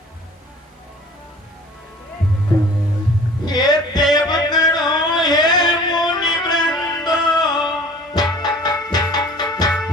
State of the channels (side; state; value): both; normal; correlation 0.47